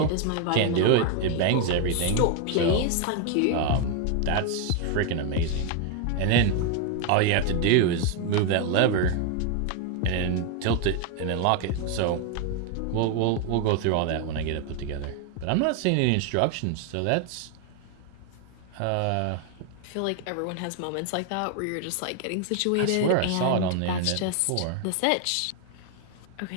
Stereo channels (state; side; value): different; both; correlation 0.01